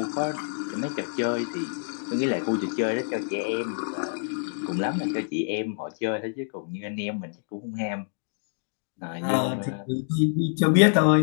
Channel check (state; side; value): silent; right; digital silence